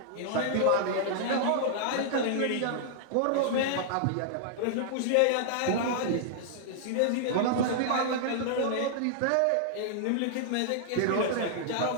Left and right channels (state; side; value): different; both; correlation -0.01